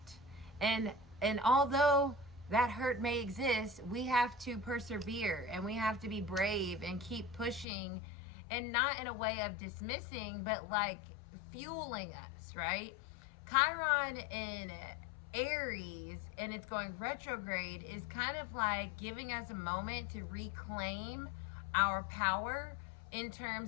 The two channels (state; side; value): drops out; right; at 7.7 s